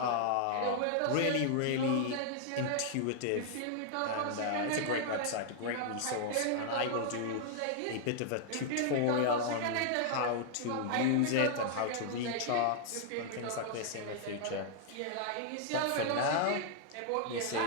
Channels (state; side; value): different; both; correlation -0.01